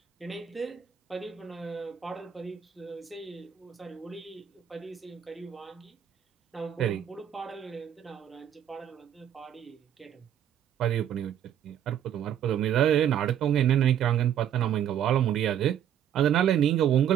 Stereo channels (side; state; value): left; quieter; 9.8 dB